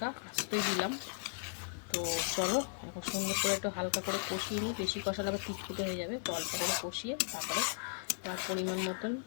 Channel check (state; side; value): silent; right; digital silence